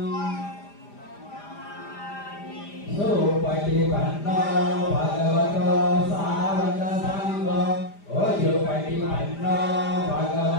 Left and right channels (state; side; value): late; right; 5.0 ms